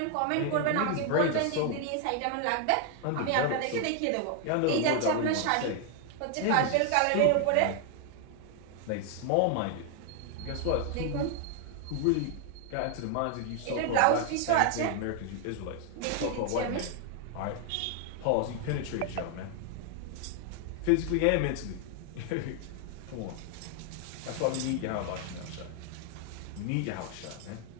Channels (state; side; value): different; both; correlation 0.00